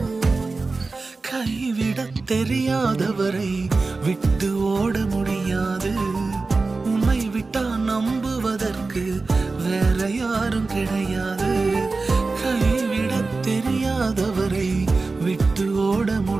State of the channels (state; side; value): quieter; left; 3.8 dB